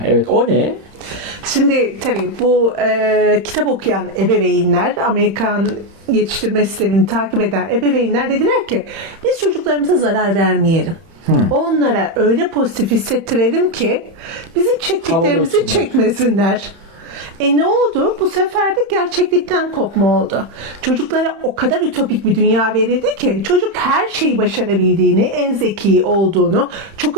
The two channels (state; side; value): late; left; 30 ms